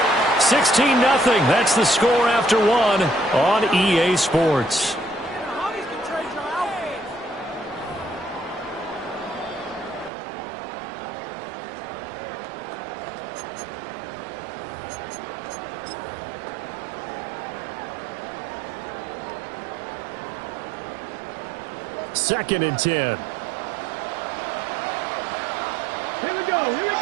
16-0. That's the score after 1 on EA Sports. Second and 10. Here we go.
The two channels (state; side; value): drops out; left; at 10.1 s